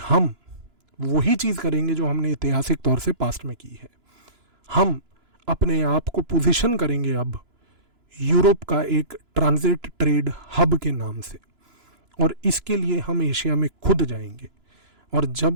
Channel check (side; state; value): left; late; 2.9 ms